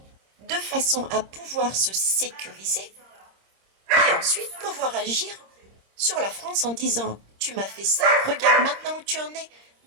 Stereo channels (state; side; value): late; left; 26 ms